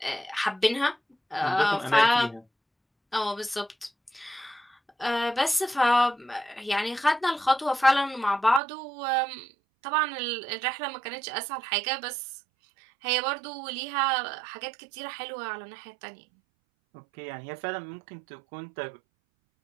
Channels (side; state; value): left; drops out; at 8.6 s